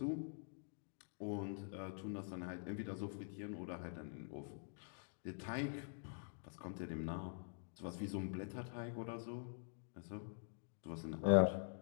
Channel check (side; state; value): right; silent; digital silence